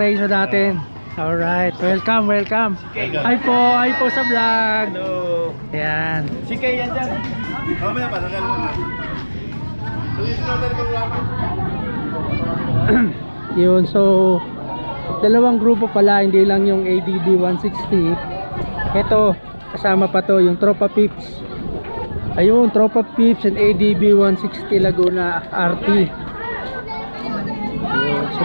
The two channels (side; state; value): both; inverted; correlation -1.00